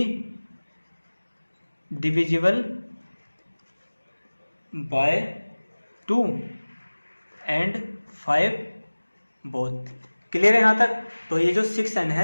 divisible by 2 and 5 both. Clear है यहाँ तक। तो ये जो 6n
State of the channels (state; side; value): inverted; both; correlation -1.00